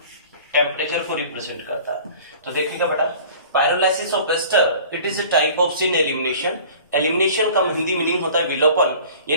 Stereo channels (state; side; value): inverted; both; correlation -0.45